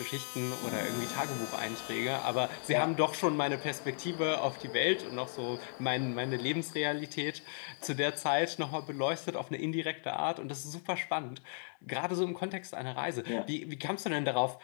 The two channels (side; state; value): right; silent; digital silence